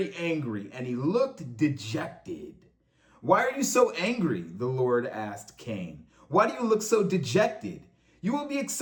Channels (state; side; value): identical; both; correlation 1.00